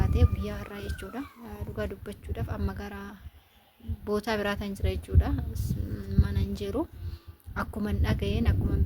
guyyaa har'aa jechuudha dhugaa dubbachuudhaaf amma gara bootaa biraataan jira jechuudha mana hin jiru. Akkuma dhaga'een akkuma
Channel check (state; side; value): identical; both; correlation 1.00